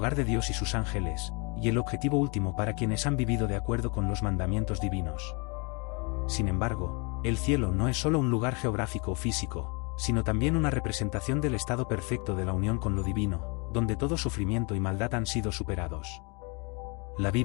de Dios y sus ángeles, y el objetivo último para quienes han vivido de acuerdo con los mandamientos divinos. Sin embargo, el cielo no es solo un lugar geográfico o físico, sino también una representación del estado perfecto de la unión con lo divino, donde todo sufrimiento y maldad han sido superados. La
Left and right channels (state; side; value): quieter; right; 32.0 dB